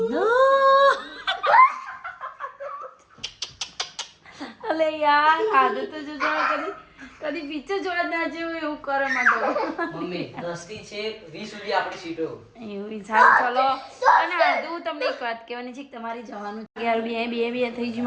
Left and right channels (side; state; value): both; identical; correlation 1.00